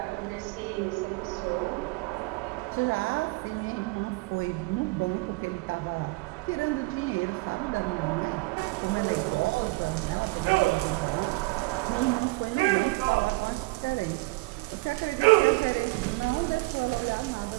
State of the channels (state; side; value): quieter; left; 24.1 dB